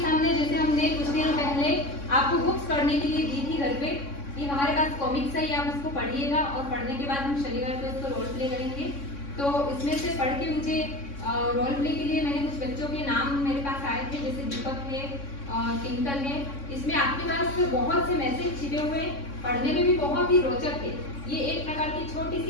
जैसे हमने कुछ दिनों पहले आपको बुक्स पढ़ने के लिए दी थी घर पे, कि हमारे पास कॉमिक्स है, आप उसको पढ़िएगा और पढ़ने के बाद हम शनिवार को इसको रोल प्ले करेंगे। तो इसमें से पढ़ के मुझे रोल प्ले के लिए मैंने कुछ बच्चों के नाम मेरे पास आए थे, जैसे दीपक है, टिंकल है। इसमें आपके पास बहुत से मैसेज छिपे हुए, पढ़ने में भी बहुत ही रोचक है। ये एक प्रकार की छोटी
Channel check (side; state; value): right; late; 3.6 ms